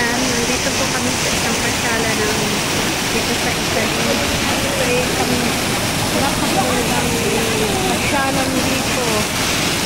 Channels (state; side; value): identical; both; correlation 1.00